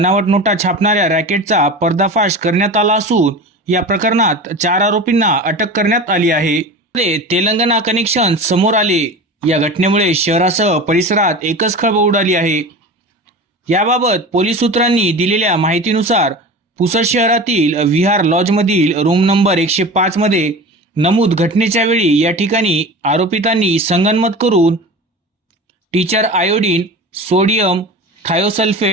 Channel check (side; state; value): both; normal; correlation 0.32